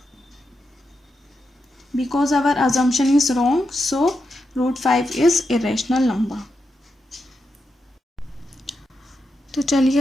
because our assumption is wrong, so root 5 is irrational number. तो चलिए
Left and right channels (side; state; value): both; normal; correlation 0.86